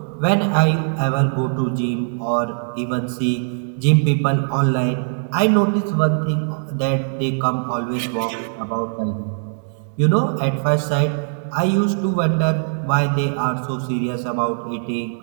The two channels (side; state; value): left; silent; 65 dB below the other